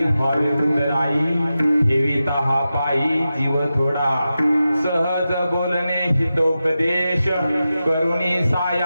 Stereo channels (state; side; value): inverted; both; correlation -0.92